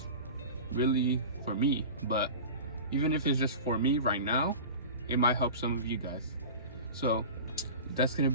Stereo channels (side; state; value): both; inverted; correlation -0.33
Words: really for me, but even if it's just for me right now, it might help some of you guys. So that's gonna